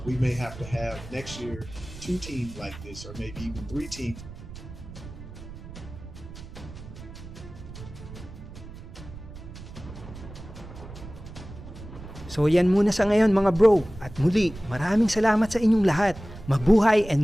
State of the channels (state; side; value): noise; right; rumble, 14 dB below the sound